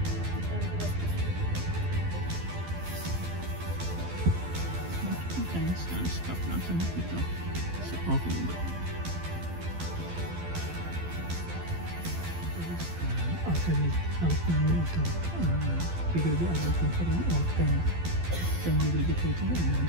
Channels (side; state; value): left; late; 12 ms